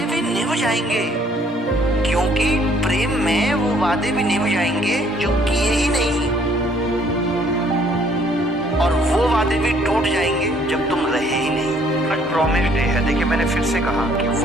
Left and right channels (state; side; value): normal; both; correlation 0.63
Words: भी निभ जाएंगे, क्योंकि प्रेम में वो वादे भी निभ जाएंगे जो किए ही नहीं, और वो वादे भी टूट जाएंगे जब तुम रहे ही नहीं। आज प्रॉमिस डे है, देखिए मैंने फिर से कहा कि